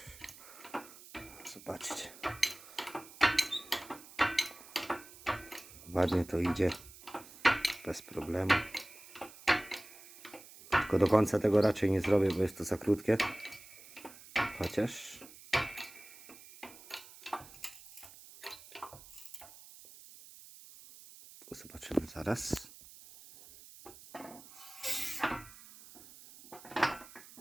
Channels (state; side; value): noise; right; hiss, 19 dB below the sound